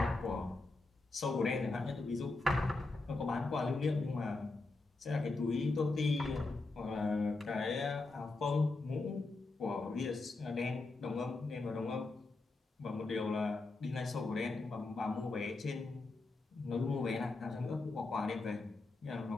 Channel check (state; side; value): quieter; right; 3.4 dB